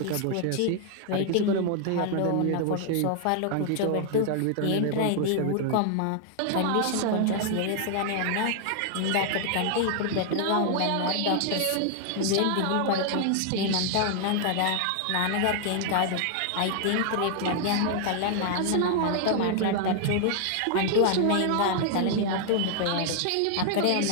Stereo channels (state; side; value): different; both; correlation 0.00